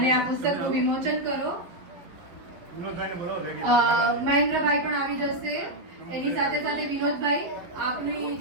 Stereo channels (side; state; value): left; late; 11 ms